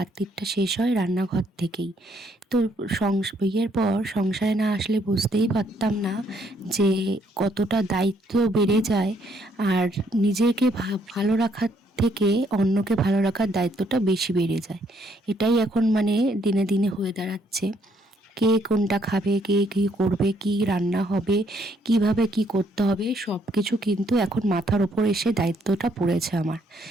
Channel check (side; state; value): both; normal; correlation 0.69